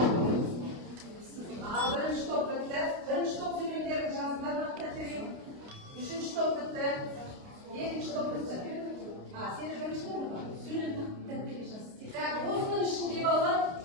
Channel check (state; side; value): late; left; 29 ms